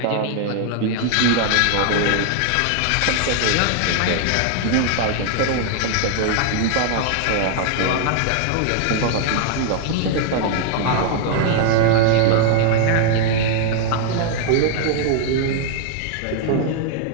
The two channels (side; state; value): both; different; correlation 0.00